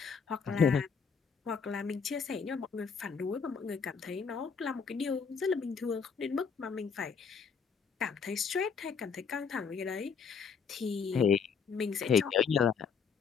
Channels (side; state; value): right; quieter; 6.0 dB